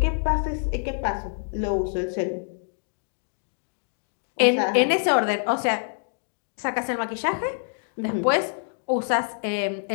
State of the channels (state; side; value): silent; right; digital silence